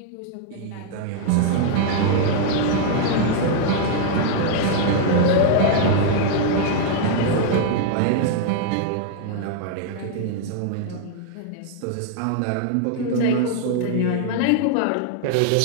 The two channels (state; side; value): different; both; correlation 0.00